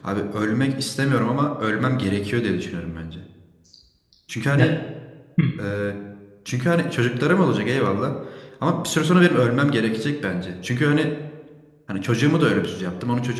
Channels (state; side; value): identical; both; correlation 1.00